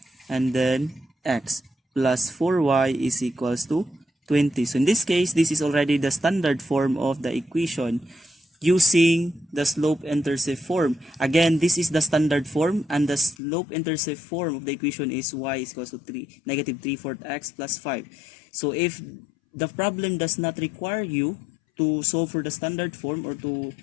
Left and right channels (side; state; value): right; drops out; at 13.4 s